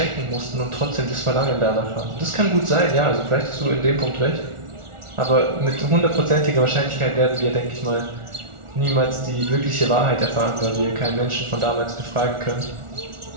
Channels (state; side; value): late; left; 1.4 ms